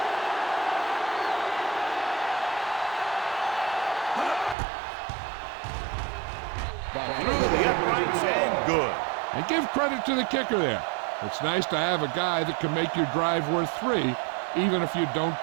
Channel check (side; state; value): left; drops out; at 4.5 s